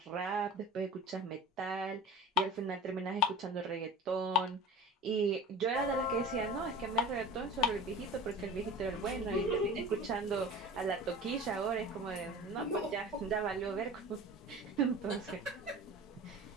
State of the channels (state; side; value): normal; both; correlation 0.38